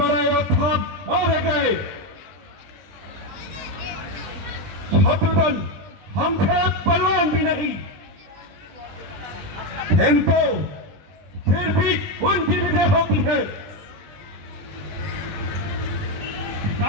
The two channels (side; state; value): left; late; 20 ms